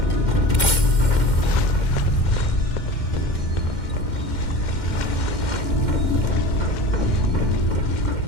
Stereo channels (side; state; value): right; late; 2.1 ms